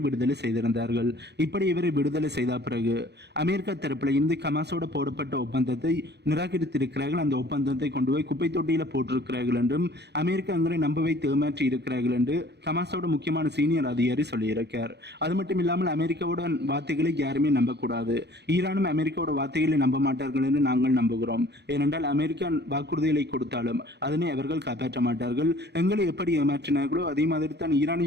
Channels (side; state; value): left; late; 0.49 ms